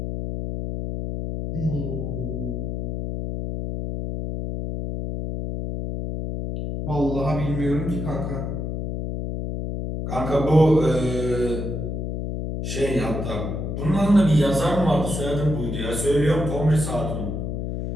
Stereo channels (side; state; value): left; noise; hum, 3 dB below the sound